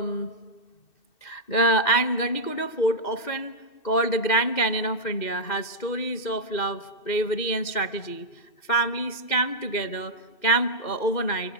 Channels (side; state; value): right; late; 2.6 ms